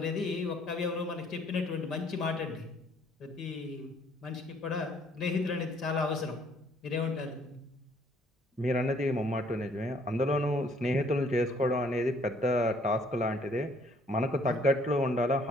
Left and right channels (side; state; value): both; normal; correlation 0.62